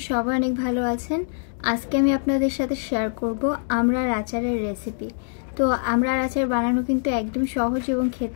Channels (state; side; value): silent; right; digital silence